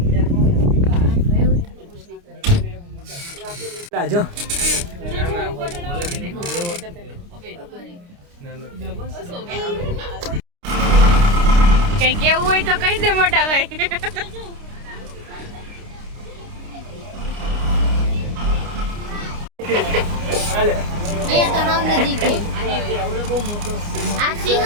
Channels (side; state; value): left; late; 29 ms